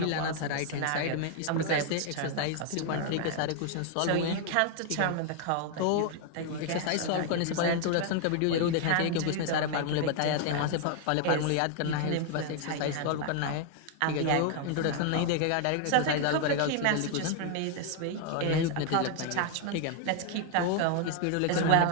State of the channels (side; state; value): both; different; correlation 0.00